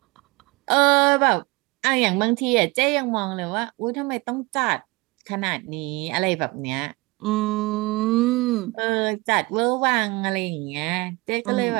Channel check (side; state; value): left; quieter; 24.1 dB